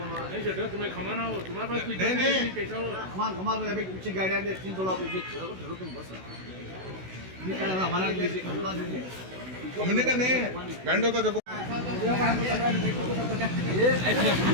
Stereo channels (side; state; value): left; late; 16 ms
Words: तुम्हें खमाना हो तुम्हारे पास नहीं कुछ गाड़ियां 300 लाख तुम बस हमने का नहीं बैंड होता देखो